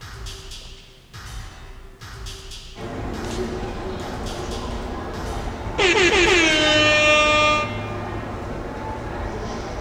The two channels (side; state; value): both; identical; correlation 1.00